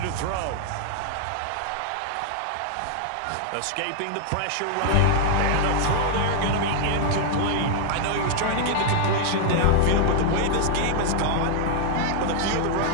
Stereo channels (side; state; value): both; different; correlation 0.00